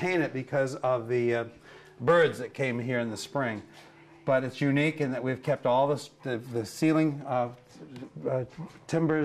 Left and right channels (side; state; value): both; identical; correlation 1.00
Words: it because of the birds that came here in the spring. But it's unique in that we've kept all the ceiling